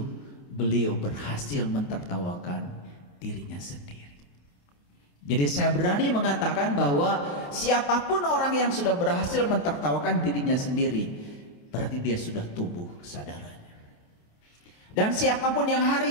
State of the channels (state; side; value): late; right; 28 ms